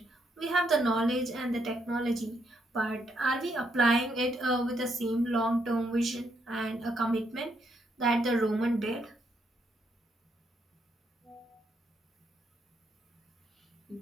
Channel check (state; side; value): normal; both; correlation 0.76